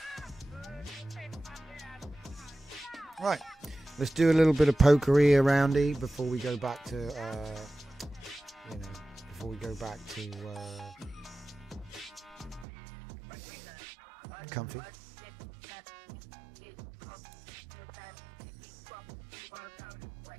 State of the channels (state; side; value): drops out; left; at 12.7 s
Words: Right, let's do a little bit of pokery aroundy before we go back to, comfy.